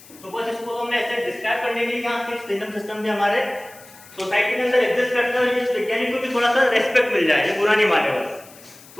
तो बस इसको हमने ऐसे डिस्क्राइब करने के लिए यहाँ 6 किंगडम सिस्टम भी हमारे सोसाइटी के अंदर एग्जिस्ट करते हैं। इस वैज्ञानिक को भी थोड़ा सा रेस्पेक्ट मिल जाए, ये बुरा नहीं माने बस।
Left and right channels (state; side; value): noise; left; hiss, 22 dB below the sound